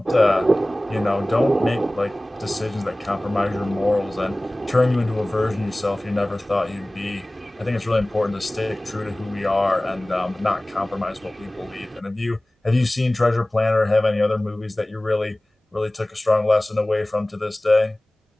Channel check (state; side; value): normal; both; correlation 0.98